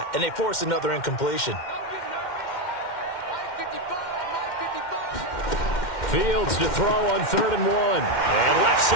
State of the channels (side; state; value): right; late; 2.1 ms